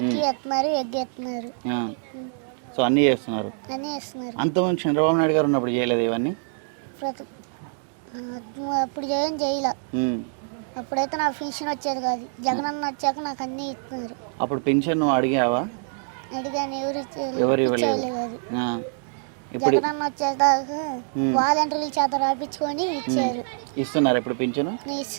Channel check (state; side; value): silent; left; 62 dB below the other